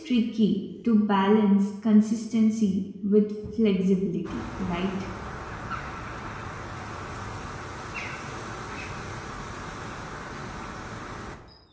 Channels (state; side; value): identical; both; correlation 1.00